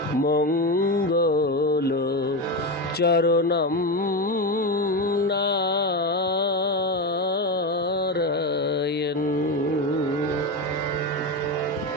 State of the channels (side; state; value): both; normal; correlation 0.16